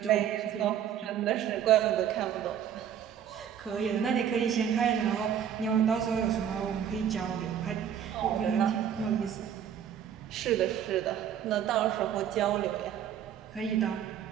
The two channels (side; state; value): left; quieter; 9.2 dB